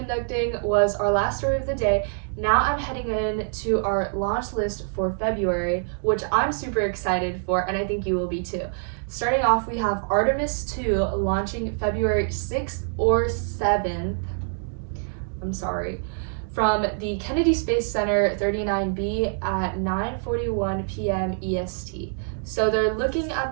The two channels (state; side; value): silent; left; digital silence